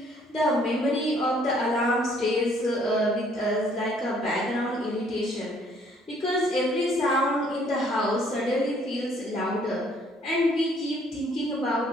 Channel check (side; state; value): both; normal; correlation 0.63